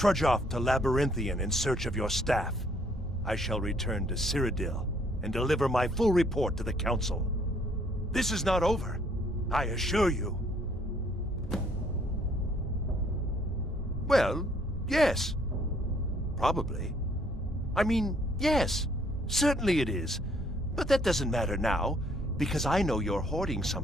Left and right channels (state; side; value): normal; both; correlation 0.65